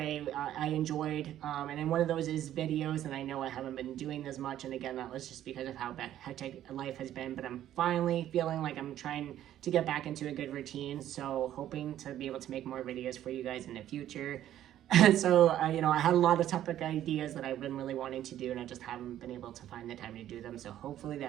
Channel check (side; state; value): left; quieter; 12.0 dB